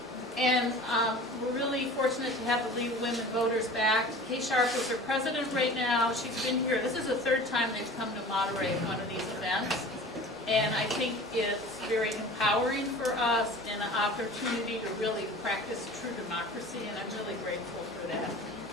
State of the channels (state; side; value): normal; both; correlation 0.40